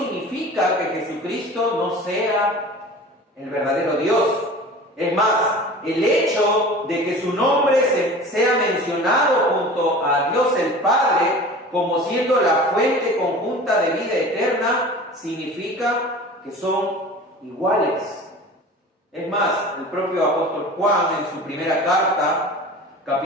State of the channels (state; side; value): normal; both; correlation 0.39